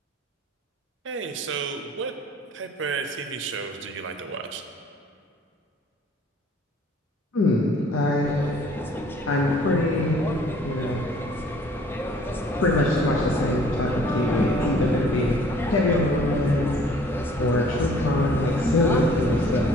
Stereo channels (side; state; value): both; normal; correlation 0.55